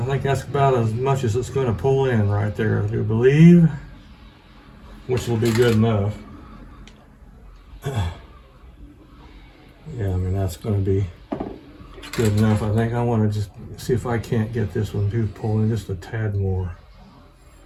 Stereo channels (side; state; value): both; identical; correlation 1.00